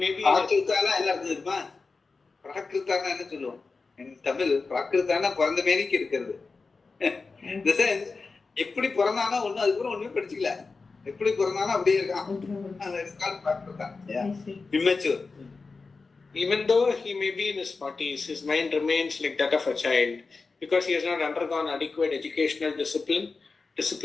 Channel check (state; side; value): quieter; right; 4.2 dB